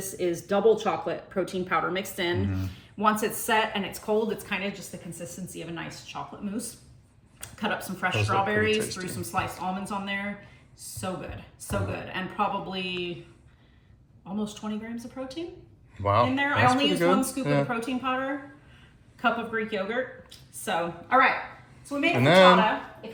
is double chocolate protein powder mixed in. Once it's set and it's cold, it's kind of just the consistency of a nice chocolate mousse. Cut up some fresh Those look pretty strawberries, tasty. threw some sliced almonds on there. So good, so good. And probably almost 20 grams of protein Wow. in there. I that's only pretty used good. one scoop of the protein powder, cup of Greek yogurt. So, all right. So we made a And then- frittata. If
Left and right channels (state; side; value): identical; both; correlation 1.00